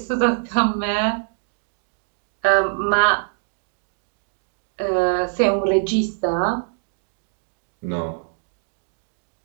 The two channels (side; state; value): left; silent; digital silence